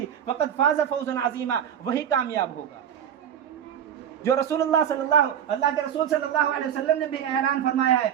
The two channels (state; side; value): quieter; left; 9.3 dB